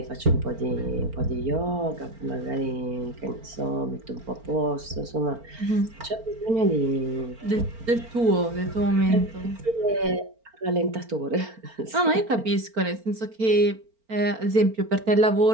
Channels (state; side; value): late; left; 4.4 ms